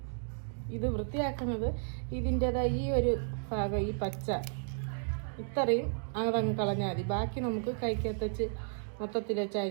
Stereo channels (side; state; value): left; silent; 56 dB below the other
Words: ഇത് വൃത്തിയാക്കുന്നത് ഇതിൻ്റെതായ ഈ ഒരു ഭാഗം, ഈ പച്ച ഇത്രയും അതങ്ങ് കളഞ്ഞാൽ മതി. ബാക്കി നമുക്ക് കൈക്കകത്ത് വെച്ച് മൊത്തത്തിൽ വെച്ച്